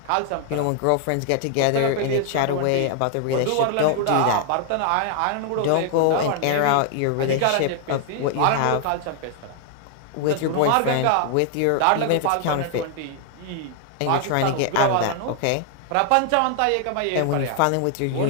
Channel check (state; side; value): different; both; correlation 0.00